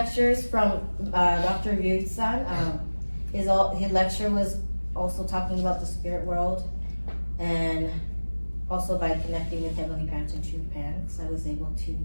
from Dr. Ryut-san. His lecture was also talking about the spirit world, and also by connecting with Heavenly Parents and True Parents, I was able to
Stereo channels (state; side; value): inverted; both; correlation -1.00